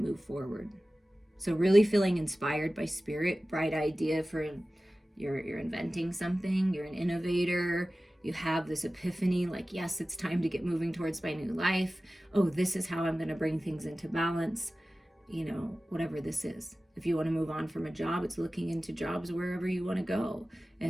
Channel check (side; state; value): both; normal; correlation 0.96